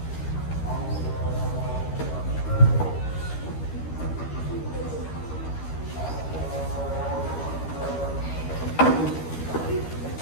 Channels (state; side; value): late; right; 13 ms